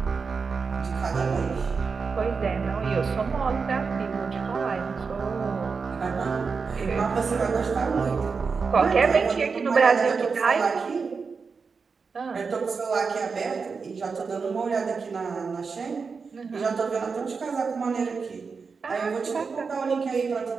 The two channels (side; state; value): left; quieter; 5.1 dB